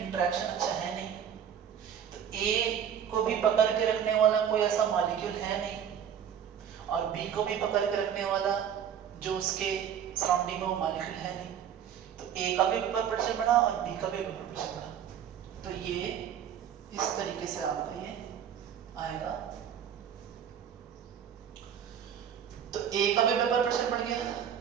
अच्छा है नहीं, तो A को भी पकड़ के रखने वाला कोई ऐसा मॉलिक्यूल है नहीं और B को भी पकड़ के रखने वाला जो उसके सराउंडिंग में वो मॉलिक्यूल है नहीं, तो A का भी वेपर प्रेशर बढ़ा और B का भी वेपर प्रेशर बढ़ा। तो ये इस तरीके से आपका ये आएगा। तो A का भी वेपर प्रेशर बढ़ गया,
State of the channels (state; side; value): quieter; left; 8.8 dB